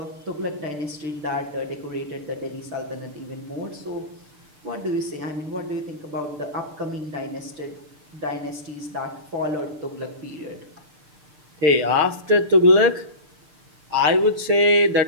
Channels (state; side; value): late; left; 6.7 ms